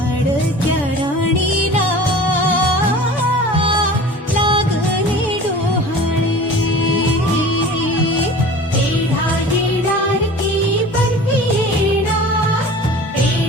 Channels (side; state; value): both; normal; correlation 0.40